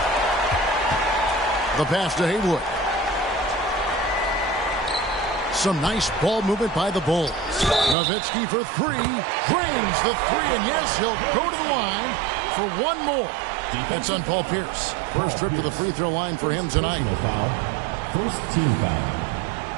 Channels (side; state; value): left; drops out; at 8.0 s